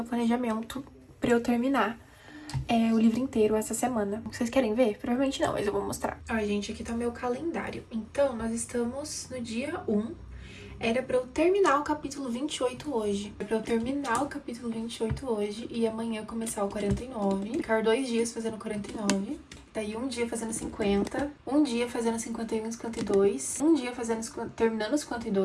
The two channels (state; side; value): identical; both; correlation 1.00